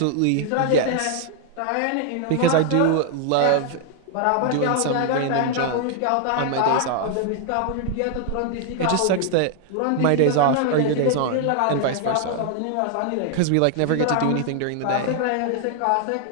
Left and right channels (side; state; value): both; different; correlation 0.00